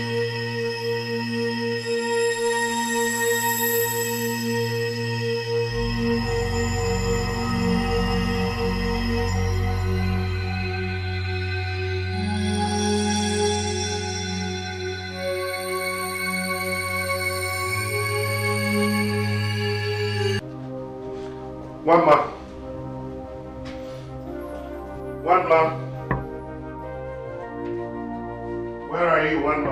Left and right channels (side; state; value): both; identical; correlation 1.00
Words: One man. One man. Where are you, one